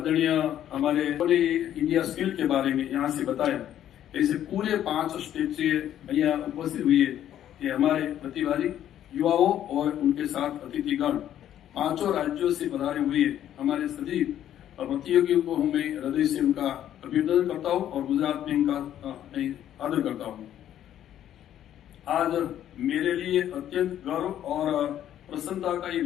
हमारे इंडिया स्किल के बारे में यहाँ से बताया। ऐसे पूरे 5 स्टेट से यहाँ उपस्थित हुए कि हमारे प्रतिभागी युवाओं और उनके साथ अतिथिगण 5 राज्यों से पधारे हुए हमारे सभी प्रतियोगियों को मैं हृदय से उनका अभिनंदन करता हूँ और गुजरात में इनका आदर करता हूँ। आज मेरे लिए अत्यंत गर्व और प्रसन्नता का ये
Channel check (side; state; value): right; quieter; 11.1 dB